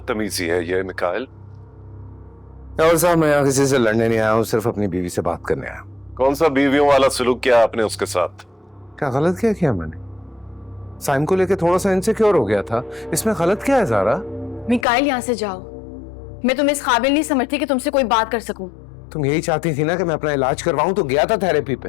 है ये मिकाइल? और साहब, मैं यहाँ किसी से लड़ने नहीं आया हूँ, सिर्फ अपनी बीवी से बात करने आया हूँ। कौन सा बीवियों वाला सलूक किया आपने उसके साथ? क्या गलत क्या किया मैंने? साइम को लेके थोड़ा सा इनसिक्योर हो गया था, इसमें गलत क्या है ज़ारा? मिकाइल यहाँ से जाओ, मैं तुम्हें इस काबिल नहीं समझती कि तुमसे कोई बात कर सकूं। तुम यही चाहती थी ना कि मैं अपना इलाज करवाऊं, तो गया था थेरेपी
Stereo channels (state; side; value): drops out; right; at 14.9 s